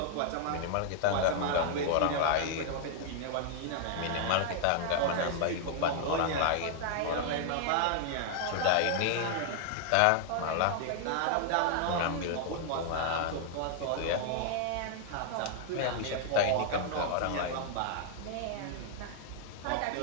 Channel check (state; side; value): different; both; correlation 0.00